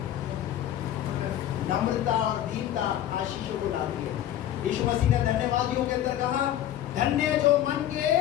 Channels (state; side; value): quieter; right; 11.9 dB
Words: नम्रता और दीनता आशीषों को लाती है। यीशु मसीह ने धन्यवादियों के अंदर कहा, धन्य जो मन के